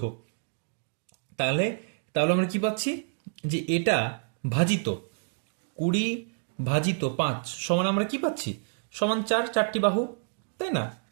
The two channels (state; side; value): silent; left; digital silence